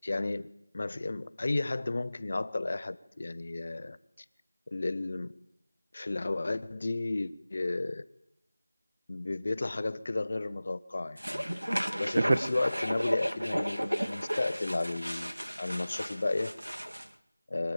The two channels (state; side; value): inverted; both; correlation -0.98